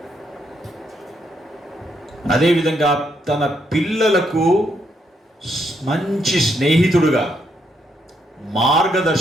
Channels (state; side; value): normal; both; correlation 0.76